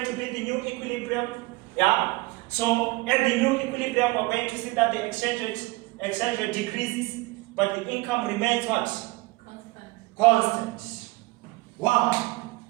to be the new equilibrium. Yeah? So at the new equilibrium, we're going to see that the exchange rate decreases, but the income remains what? Constant. Why?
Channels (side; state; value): left; quieter; 22.0 dB